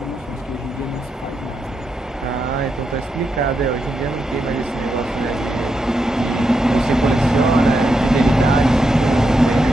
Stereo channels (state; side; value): normal; both; correlation 0.84